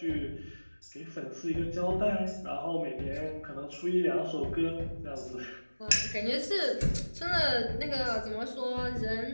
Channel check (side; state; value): both; inverted; correlation -1.00